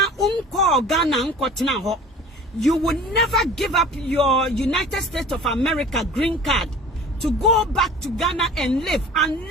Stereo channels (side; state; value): both; normal; correlation 0.43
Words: unko Ghana unko tina ho. You will never give up your United States of America green card to go back to Ghana and live